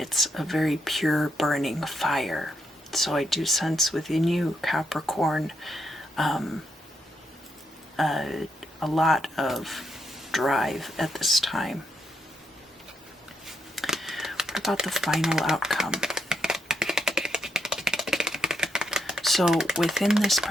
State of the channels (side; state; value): both; normal; correlation 0.80